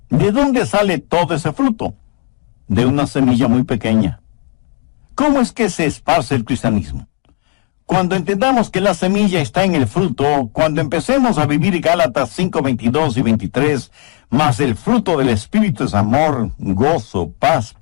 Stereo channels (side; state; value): right; quieter; 34.9 dB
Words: ¿De dónde sale todo ese fruto? De una semilla muy pequeña. ¿Cómo es que se esparce el cristianismo? Cuando entendamos que la semilla está en el fruto, cuando empecemos a vivir Gálatas 5:22 y 23, más el fruto del Espíritu es amor, gozo, paz,